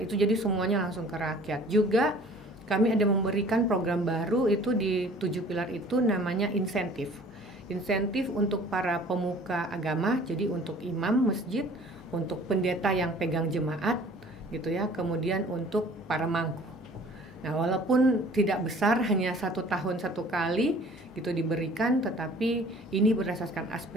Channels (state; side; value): normal; both; correlation 0.50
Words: jadi semuanya langsung ke rakyat. Juga kami ada memberikan program baru itu di 7 pilar itu, namanya insentif untuk para pemuka agama, jadi untuk imam masjid, untuk pendeta yang pegang jemaat, gitu ya, kemudian untuk para mangku. Nah, walaupun tidak besar, hanya 1 tahun 1 kali gitu diberikan, tetapi ini berdasarkan